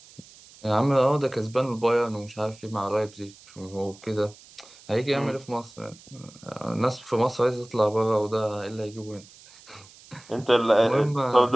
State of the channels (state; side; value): noise; right; hiss, 23 dB below the sound